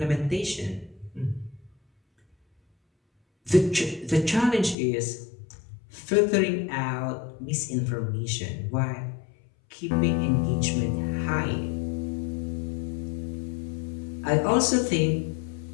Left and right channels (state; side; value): drops out; right; at 4.8 s